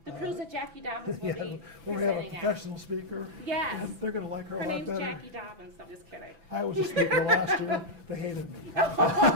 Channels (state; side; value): late; left; 6.0 ms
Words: cruise that Jacqui Dobens will be when we have a presenting professional speaker. Yes. They're going to like her a lot name's better. Jacqui Dobens. I'm just kidding. I was a speaker last year. They hated me.